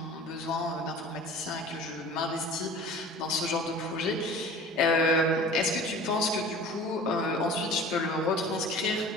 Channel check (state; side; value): normal; both; correlation 0.41